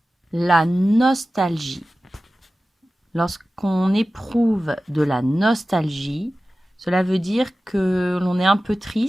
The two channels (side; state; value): both; normal; correlation 0.95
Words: La nostalgie. Lorsqu'on éprouve de la nostalgie, cela veut dire que l'on est un peu